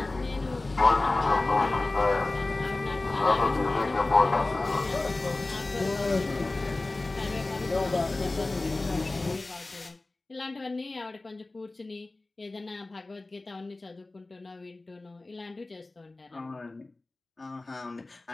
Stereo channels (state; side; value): quieter; right; 3.1 dB